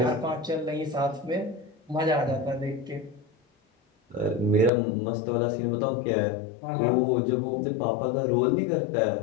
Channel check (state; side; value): drops out; right; at 4.7 s